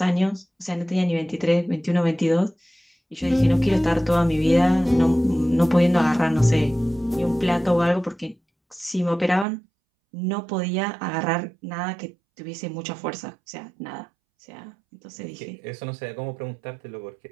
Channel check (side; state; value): left; drops out; at 9.5 s